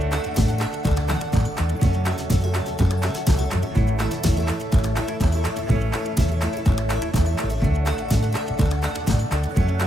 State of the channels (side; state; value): both; normal; correlation 0.83